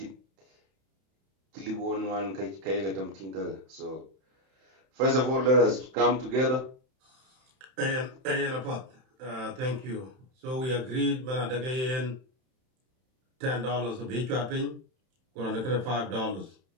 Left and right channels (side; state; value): left; late; 31 ms